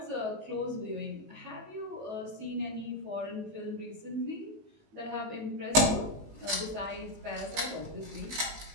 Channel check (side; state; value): left; late; 19 ms